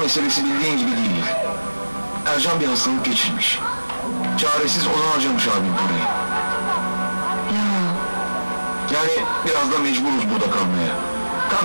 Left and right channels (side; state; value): both; inverted; correlation -1.00